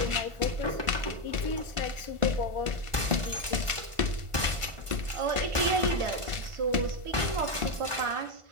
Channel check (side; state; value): left; late; 1.5 ms